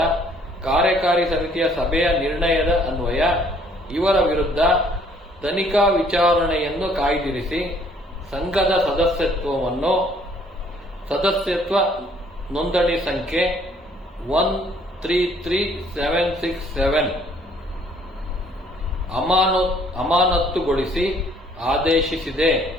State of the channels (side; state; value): both; normal; correlation 0.61